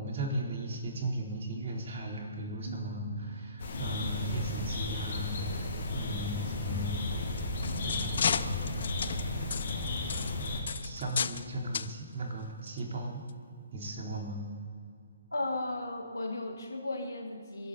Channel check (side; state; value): both; inverted; correlation -0.54